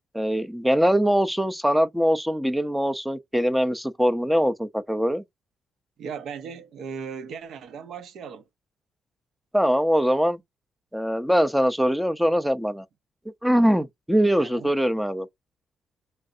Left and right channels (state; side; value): normal; both; correlation 0.98